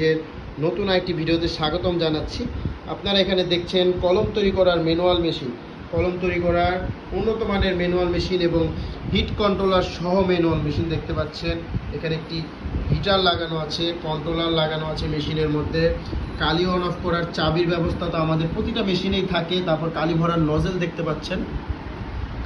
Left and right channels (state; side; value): identical; both; correlation 1.00